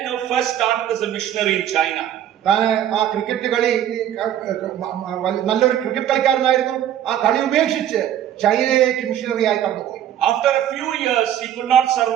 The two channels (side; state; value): left; quieter; 10.8 dB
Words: first started as a missionary in China. താന് ആ ക്രിക്കറ്റ് കളി നല്ലൊരു ക്രിക്കറ്റ് കളിക്കാരനായിരുന്നു. ആ കളി ഉപേക്ഷിച്ച് ചൈനയിലേക്ക് മിഷണറി ആയി കടന്നുപോയി. After a few years, he could not